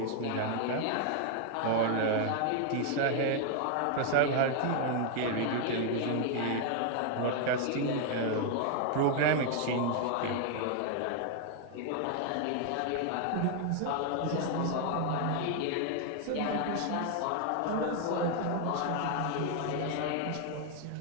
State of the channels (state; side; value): different; both; correlation 0.00